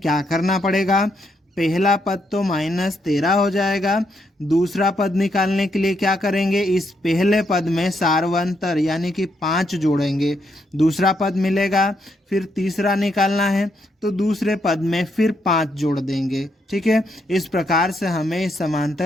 करना पड़ेगा, पहला पद तो -13 हो जाएगा, दूसरा पद निकालने के लिए क्या करेंगे, इस पहले पद में सार्वंतर यानी कि 5 जोड़ेंगे, दूसरा पद मिलेगा, फिर तीसरा निकालना है तो दूसरे पद में फिर 5 जोड़ देंगे। ठीक है, इस प्रकार से हमें इस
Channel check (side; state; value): both; normal; correlation 0.77